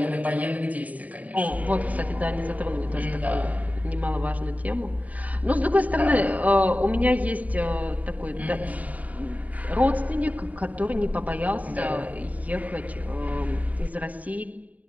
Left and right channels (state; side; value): late; left; 0.072 ms